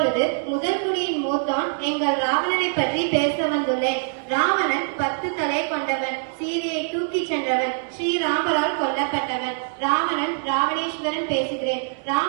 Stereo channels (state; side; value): silent; left; 63 dB below the other